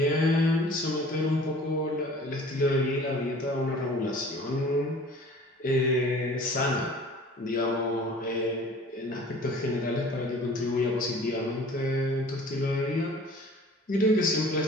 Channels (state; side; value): normal; both; correlation 0.47